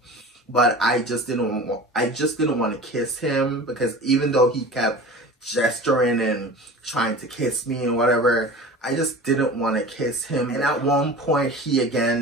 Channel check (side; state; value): both; normal; correlation 0.37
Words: But I just didn't want to kiss him, because even though he kept gesturing and trying to kiss me and whatever, I just didn't want to kiss him. And at one point, he